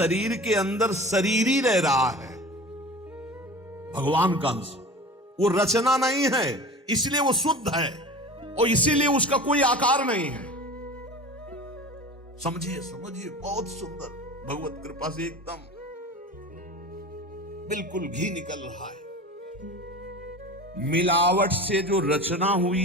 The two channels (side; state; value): both; normal; correlation 0.36